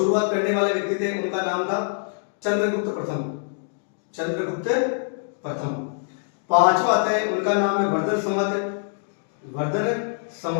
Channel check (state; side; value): silent; right; digital silence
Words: करने वाले व्यक्ति थे, उनका नाम था चंद्रगुप्त प्रथम। पांचवा आता है, उनका नाम है वर्धन